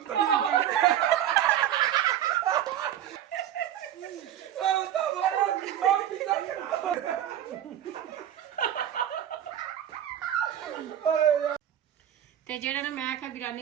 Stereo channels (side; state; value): left; quieter; 10.9 dB